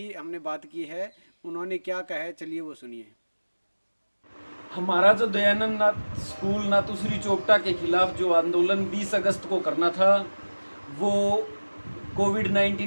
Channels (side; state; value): both; inverted; correlation -1.00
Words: हमने बात की है। उन्होंने क्या कहा है, चलिए वो सुनिए। हमारा जो दयानंद नाथ स्कूल नाथुश्री चोपटा के खिलाफ जो आंदोलन 20 अगस्त को करना था, वो